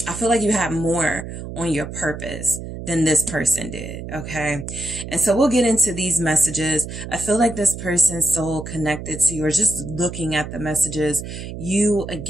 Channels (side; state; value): right; noise; hum, 9 dB below the sound